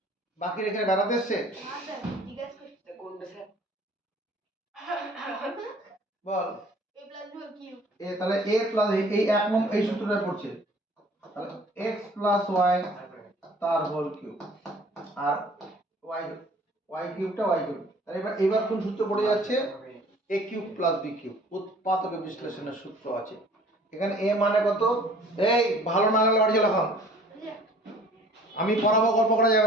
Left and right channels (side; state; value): both; normal; correlation 0.51